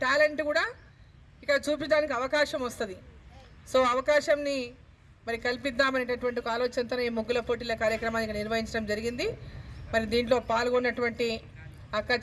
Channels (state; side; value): identical; both; correlation 1.00